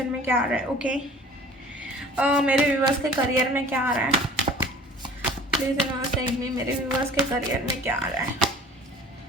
में क्या आ रहा है। ओके, मेरे व्यूवर्स के करियर में क्या आ रहा है। Please universe guide me. मेरे व्यूवर्स के करियर में क्या आ रहा है।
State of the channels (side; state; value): both; normal; correlation 0.46